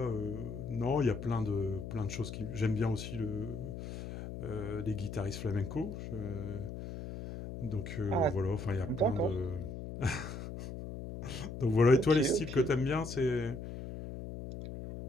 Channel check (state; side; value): noise; left; hum, 8 dB below the sound